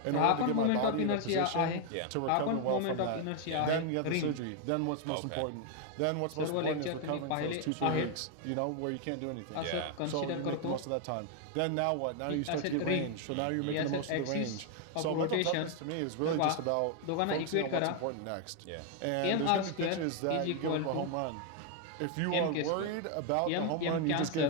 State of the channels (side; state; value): both; different; correlation 0.00